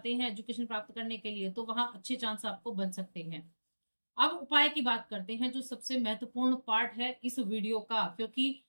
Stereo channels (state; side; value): inverted; both; correlation -1.00